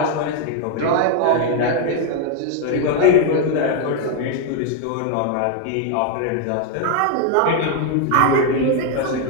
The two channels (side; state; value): both; different; correlation 0.00